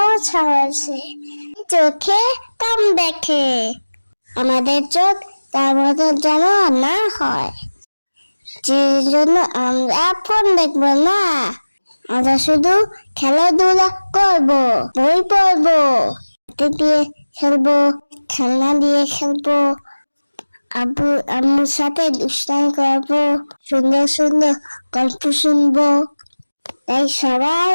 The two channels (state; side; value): inverted; both; correlation -1.00